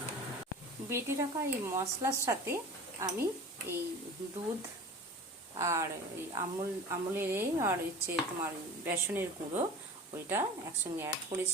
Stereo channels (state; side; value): normal; both; correlation 0.37